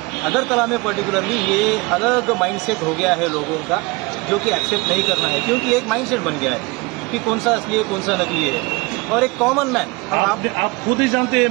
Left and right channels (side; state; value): left; quieter; 25.4 dB